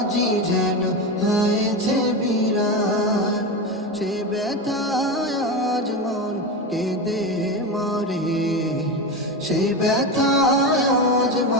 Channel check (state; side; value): normal; both; correlation 0.19